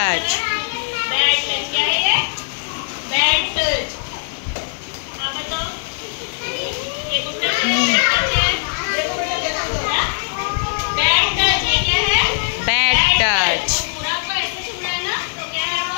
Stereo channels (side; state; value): right; silent; digital silence